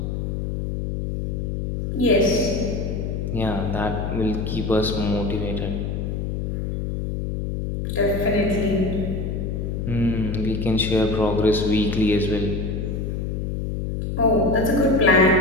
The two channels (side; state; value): left; noise; hum, 3 dB below the sound